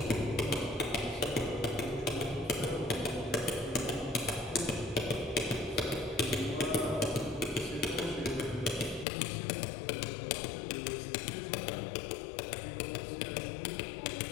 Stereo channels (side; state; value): right; drops out; at 9.1 s